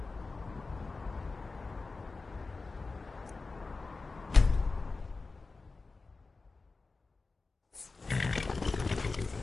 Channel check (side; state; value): right; quieter; 3.9 dB